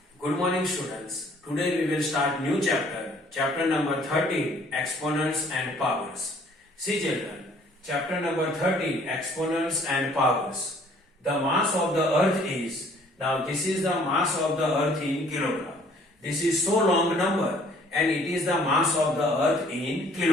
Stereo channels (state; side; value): normal; both; correlation 0.58